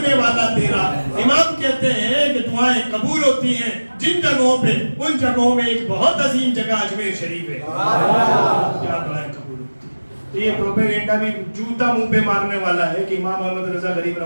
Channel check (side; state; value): both; inverted; correlation -1.00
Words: والا تیرا. امام کہتے ہیں کہ دعائیں قبول ہوتی ہیں جن جگہوں پہ, ان جگہوں میں ایک بہت عظیم جگہ اجمیر شریف ہے, کیا دعائیں قبول ہوتی ہیں. تو یہ پروپیگنڈا بھی جوتا منہ پہ مارنے والا ہے کہ امام احمد رضا غریب